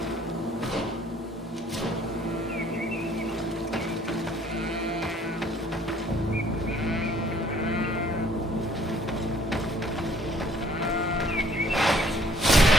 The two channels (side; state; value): both; normal; correlation 0.59